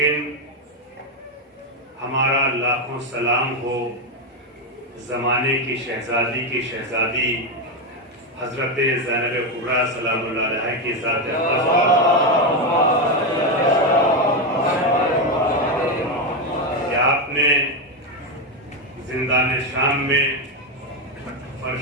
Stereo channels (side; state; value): both; normal; correlation 0.08